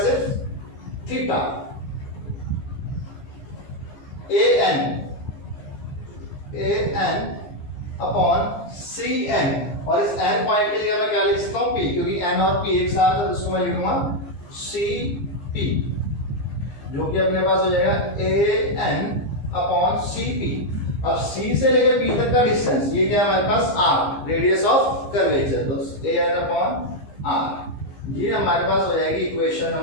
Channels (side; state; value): right; late; 15 ms